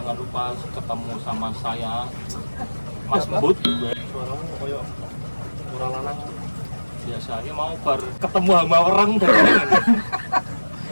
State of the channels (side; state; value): both; inverted; correlation -1.00